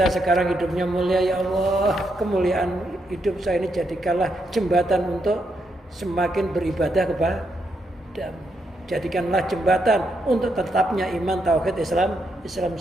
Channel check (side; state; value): both; normal; correlation 0.80